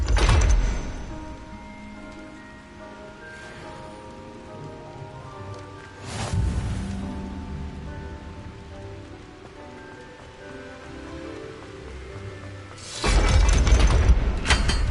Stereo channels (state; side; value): identical; both; correlation 1.00